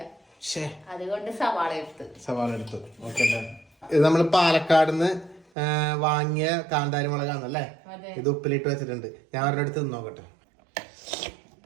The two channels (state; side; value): drops out; left; at 5.5 s